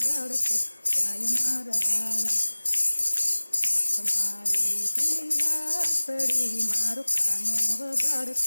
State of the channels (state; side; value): inverted; both; correlation -1.00